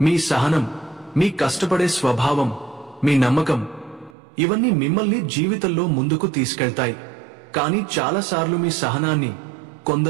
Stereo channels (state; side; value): drops out; left; at 4.2 s